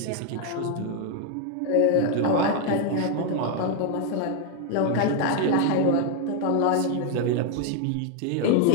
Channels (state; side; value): different; both; correlation 0.01